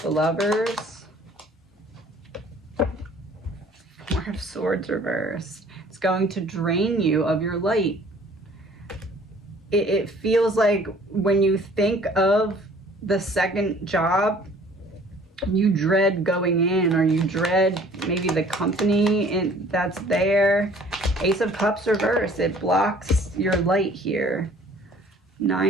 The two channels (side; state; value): both; normal; correlation 0.53